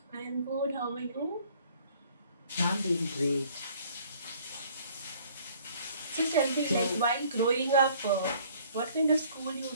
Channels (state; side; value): inverted; both; correlation -0.57